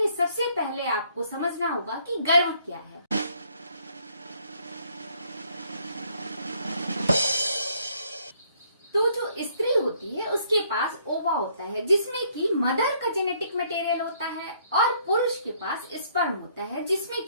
सबसे पहले आपको समझना होगा कि गर्भ क्या है। तो जो स्त्री होती है उसके पास ओवा होता है जिसमें कि मदर का जेनेटिक मटेरियल होता है, और पुरुष के पास स्पर्म होता है जिसमें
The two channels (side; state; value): both; inverted; correlation -0.66